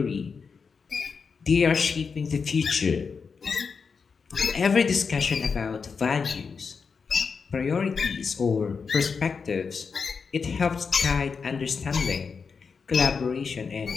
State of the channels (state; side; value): quieter; right; 5.5 dB